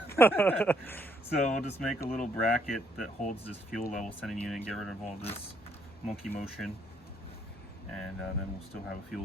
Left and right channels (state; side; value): normal; both; correlation 0.70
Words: So we'll just make a little bracket that holds this fuel level sending unit and get rid of all this monkey motion. And then we'll still have a